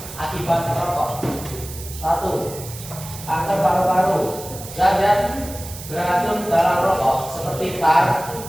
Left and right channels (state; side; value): noise; right; hiss, 13 dB below the sound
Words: akibat merokok. 1. Kanker paru-paru. Zat beracun dalam rokok seperti tar